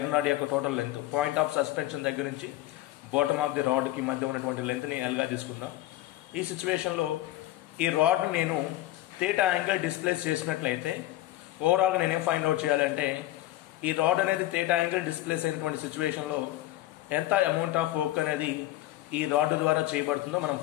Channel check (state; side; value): quieter; right; 15.5 dB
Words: రాడ్ యొక్క total length point of suspension దగ్గర నుంచి బాటమ్ ఆఫ్ ది రాడ్కి మధ్య ఉన్నటువంటి లెంత్ని ఎల్గా తీసుకుందాం. ఈ సిచ్యువేషన్లో ఈ రాడ్ని నేను థీటా యాంగిల్ డిస్ప్లేస్ చేసినట్లయితే ఓవరాల్గా నేనేం ఫైండ్ అవుట్ చేయాలంటే ఈ రాడ్ అనేది థీటా యాంగిల్ డిస్ప్లేస్ అయినటువంటి సిచ్యువేషన్లో ఎంత అమౌంట్ ఆఫ్ వర్క్ అనేది ఈ రాడ్ ద్వారా చేయబడుతుందో మనం